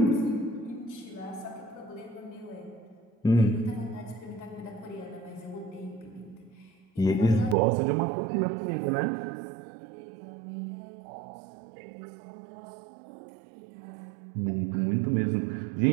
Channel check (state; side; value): drops out; left; at 7.6 s